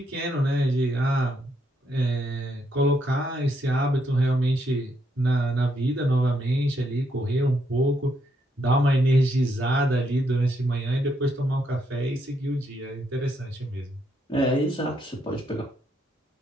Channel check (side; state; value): both; normal; correlation 0.76